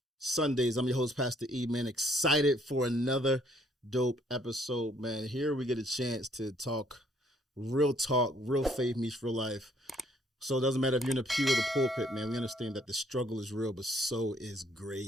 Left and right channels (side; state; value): both; normal; correlation 0.65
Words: Sundays. I'm your host, Pastor E, man. Excited for another dope episode, man. Here we get a chance to talk, real faith meets real life. So it doesn't matter if you're in the pew or the pulpit, man. We understand that the struggle is real, but so is